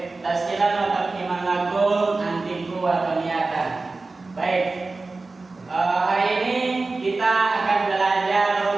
tasqilan wa tafhiman lakum antiku wa taniyatan. Baik. Hari ini kita akan belajar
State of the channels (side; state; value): left; quieter; 3.6 dB